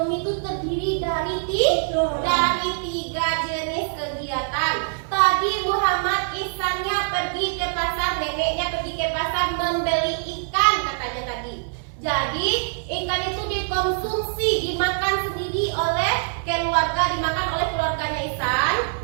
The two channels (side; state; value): left; silent; 63 dB below the other